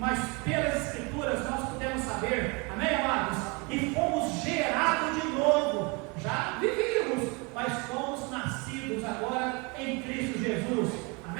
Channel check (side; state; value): left; quieter; 29.7 dB